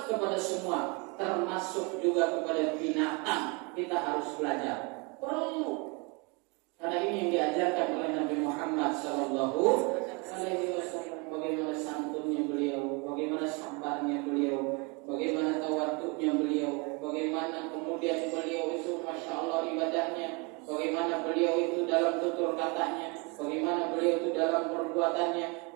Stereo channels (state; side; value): quieter; left; 30.5 dB